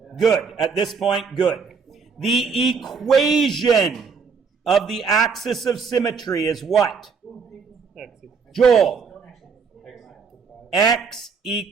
Good. At this point, good. The equation of the axis of symmetry is what? Joel. X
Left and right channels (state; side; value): quieter; left; 5.5 dB